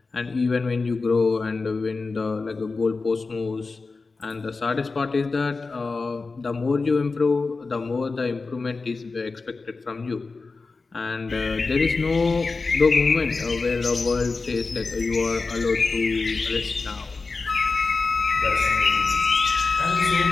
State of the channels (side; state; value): right; quieter; 4.0 dB